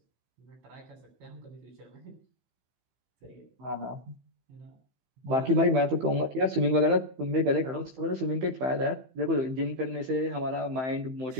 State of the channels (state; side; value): late; left; 15 ms